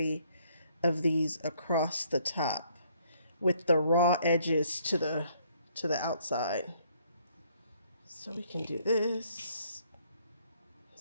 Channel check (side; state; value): both; inverted; correlation -0.66